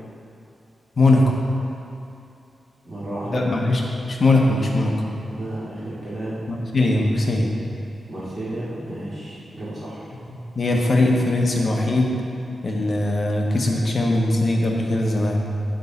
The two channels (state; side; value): normal; both; correlation 0.88